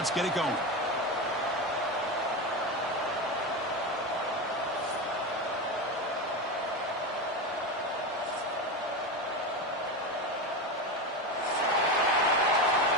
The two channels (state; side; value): normal; both; correlation 0.18